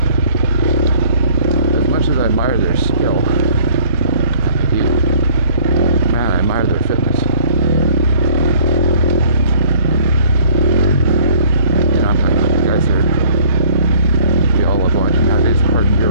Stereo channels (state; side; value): inverted; both; correlation -0.56